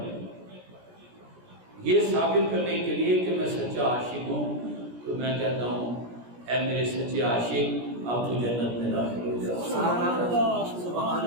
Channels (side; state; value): left; late; 17 ms